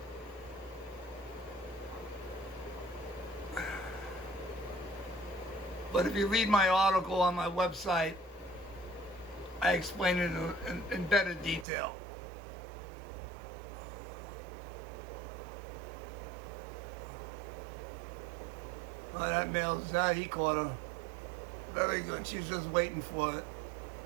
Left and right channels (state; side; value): drops out; left; at 11.7 s